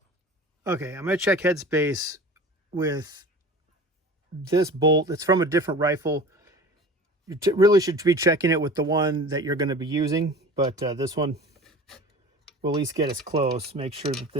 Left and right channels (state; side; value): normal; both; correlation 0.38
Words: Okay, I'm going to check headspace with this bolt. It's from a different rifle. You really should be checking it with the one that you're going to be using, but this one will at least get us close. Make sure that